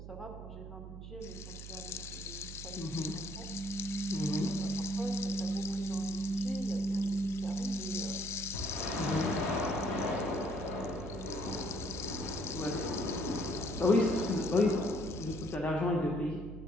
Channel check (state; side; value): noise; right; hum, 11 dB below the sound